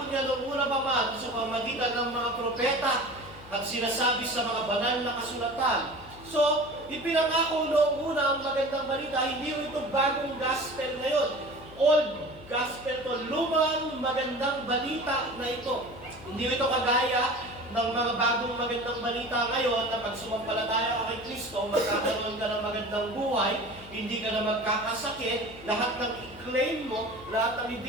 niya noong una pa man sa pamamagitan ng mga propeta at sinasabi sa mga banal na kasulatan. So, ipinangako noong una ang magandang balita, hindi ito bagong gospel ngayon. Old gospel to, lumang magandang balita na ito. Hindi ito kagaya ng mga bagong magandang balita ngayon na pag sumampalataya ka kay Kristo, magkakaroon ka ng magandang buhay, hindi ka na magkakasakit, lahat ng i-claim mo, lahat ng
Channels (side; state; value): left; noise; hum, 19 dB below the sound